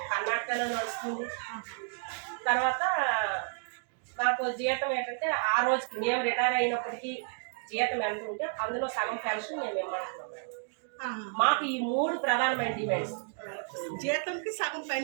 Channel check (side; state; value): left; silent; 57 dB below the other